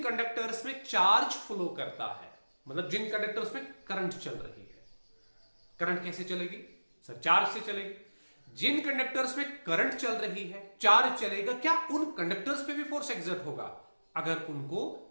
कंडक्टर्स में चार्ज फ्लो करता है, मतलब जिन कंडक्टर्स में करंट चल रही है, करंट कैसे चलेगी सर? चार्ज से चलेगी। जिन कंडक्टर्स में करंट चल रही है, चार्ज चलेगा, क्या उन कंडक्टर्स पे भी फोर्स एग्जर्ट होगा? अगर उनको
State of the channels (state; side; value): inverted; both; correlation -1.00